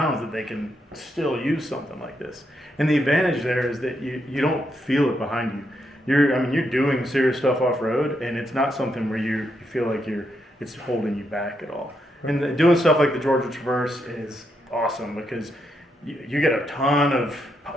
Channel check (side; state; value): both; normal; correlation 0.80